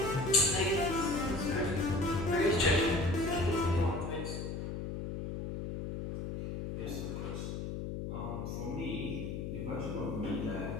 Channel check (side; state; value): left; noise; hum, 5 dB below the sound